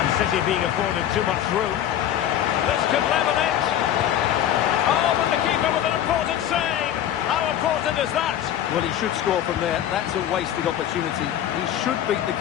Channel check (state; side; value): quieter; right; 11.1 dB